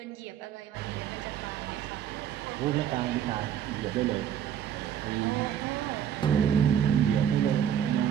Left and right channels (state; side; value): quieter; left; 9.4 dB